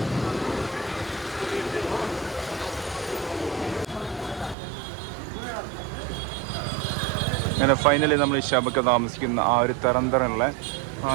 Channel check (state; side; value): drops out; left; at 4.5 s